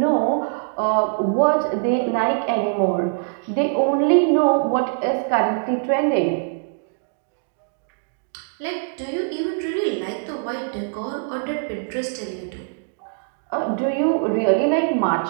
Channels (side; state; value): left; silent; 63 dB below the other